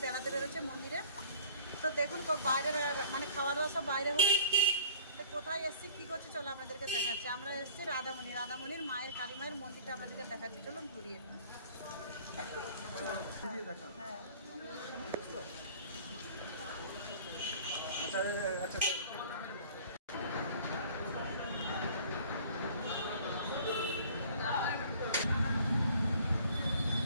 বেড়াতে বেরোচ্ছি মন্দিরে। তো দেখুন বাইরে মানে খাওয়া দাওয়া সব বাইরে হবে। তো কোথায় এসেছি কী করছি চলো আপনাদেরকে দেখাচ্ছি। আমরা এসেছি রাধামণির মায়ের কালী মায়ের মন্দিরটা আপনাদেরকে দেখাচ্ছি, চলুন ঘুরিয়ে। হ্যাঁ আচ্ছা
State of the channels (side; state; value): both; inverted; correlation -0.49